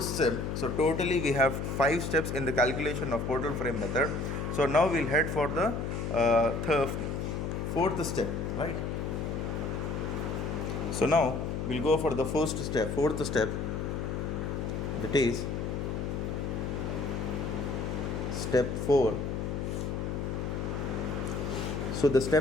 step. So totally we have 5 steps in the calculation of portal frame method. So now we'll head for the fourth step, right? So now we'll go for the fourth step, that is step 4. So the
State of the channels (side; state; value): left; noise; hum, 2 dB below the sound